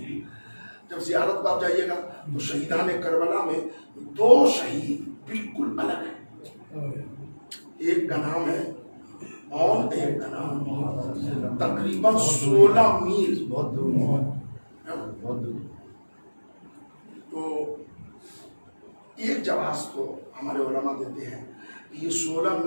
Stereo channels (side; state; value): both; inverted; correlation -1.00